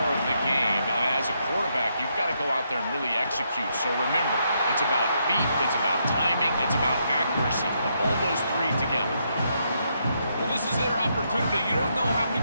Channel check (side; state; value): both; inverted; correlation -0.77